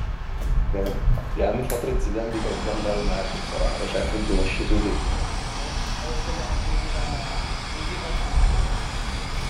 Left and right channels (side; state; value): both; identical; correlation 1.00